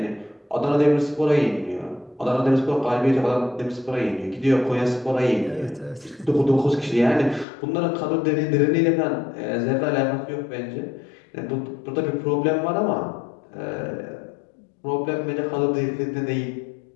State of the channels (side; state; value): right; drops out; at 7.5 s